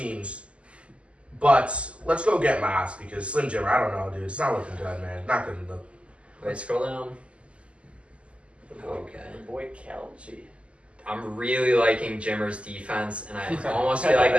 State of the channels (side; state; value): left; late; 0.058 ms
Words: But let's go get Moss because Slim Jimmer, I don't know, dude. It's not looking good, man. Not good enough. Wait, scroll down. Okay. The boy Kelsey. I'm really liking Jimmer's defense, and I almost feel like